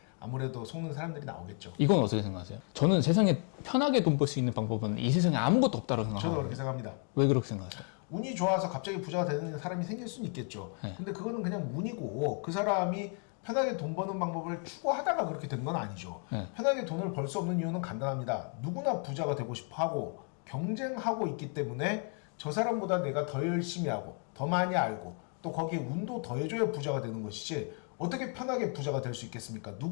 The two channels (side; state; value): right; quieter; 40.0 dB